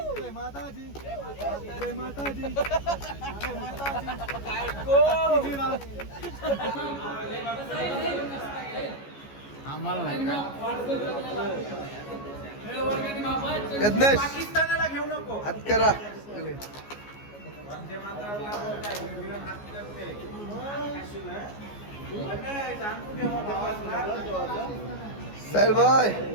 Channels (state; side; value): late; right; 14 ms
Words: जय माता दी, जय माता दी. आम्हाला नाही यज्ञेश पाकिस्तानाला घेऊ नको. हात करा. साहिल भाई